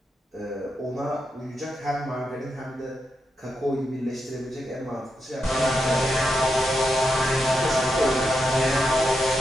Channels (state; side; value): normal; both; correlation 0.85